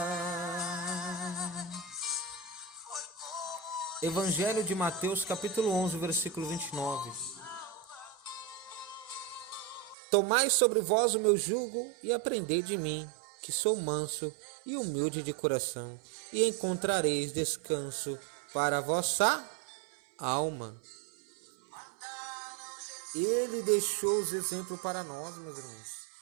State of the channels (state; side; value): drops out; left; at 10.0 s